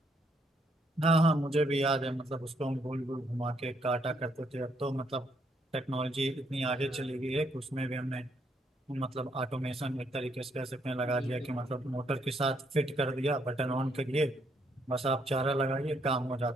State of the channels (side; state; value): both; normal; correlation 0.73